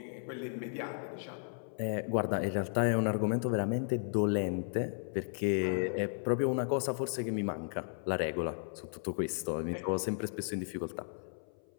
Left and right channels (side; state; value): right; silent; 55 dB below the other